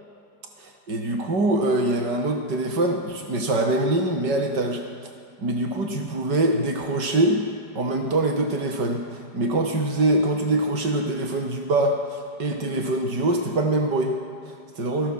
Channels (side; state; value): left; late; 5.3 ms